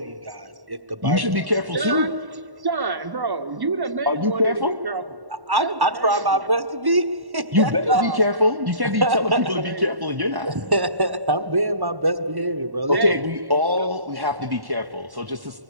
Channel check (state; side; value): late; left; 1.1 ms